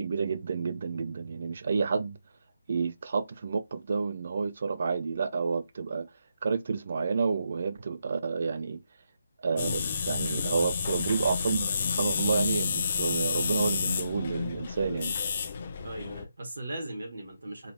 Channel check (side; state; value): both; inverted; correlation -0.82